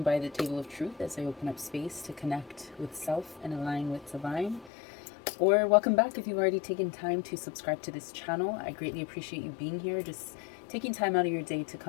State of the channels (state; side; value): drops out; right; at 4.7 s